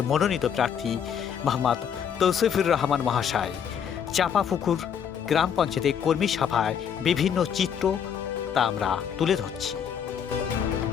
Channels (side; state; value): right; quieter; 8.0 dB